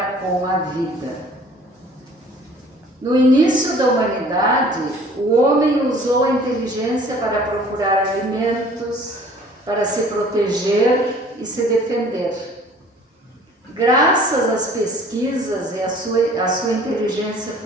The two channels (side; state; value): both; normal; correlation 0.51